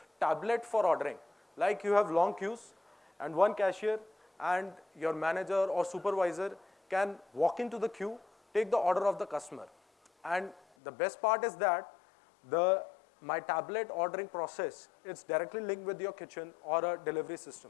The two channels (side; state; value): right; drops out; at 10.6 s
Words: tablet for ordering. Like you have long queues and one cashier and your manager or supervisor can walk into the queue, take the order of the customer. And the best part is that my tablet ordering process, it's directly linked with your kitchen or a delivery